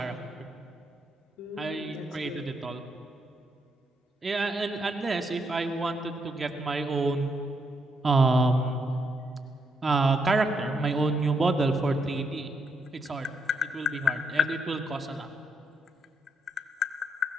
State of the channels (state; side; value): normal; both; correlation 0.77